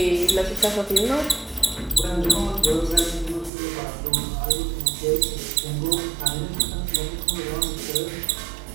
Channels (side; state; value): left; drops out; at 3.5 s